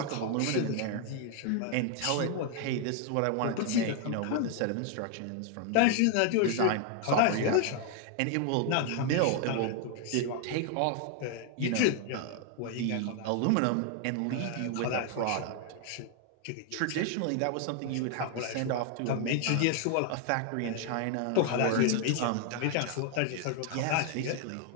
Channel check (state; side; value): different; both; correlation 0.00